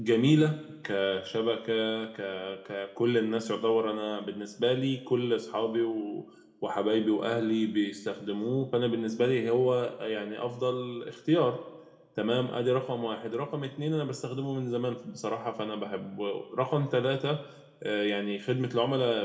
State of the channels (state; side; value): identical; both; correlation 1.00